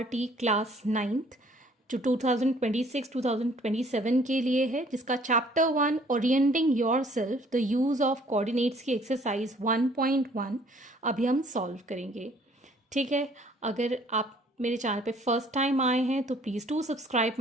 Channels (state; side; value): normal; both; correlation 0.58